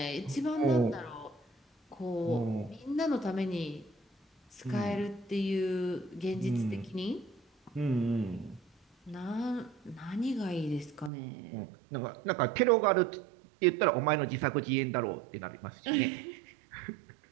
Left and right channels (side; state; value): left; drops out; at 11.1 s